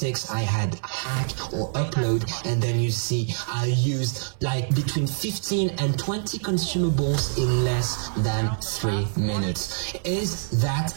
I had hack or upload, and then you see I used like between 15 and 20 consumables in less than 3 minutes. Is that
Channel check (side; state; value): left; silent; 62 dB below the other